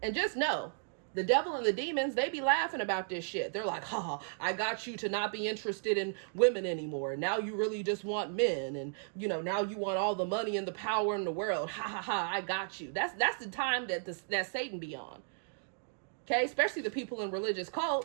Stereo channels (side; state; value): left; silent; digital silence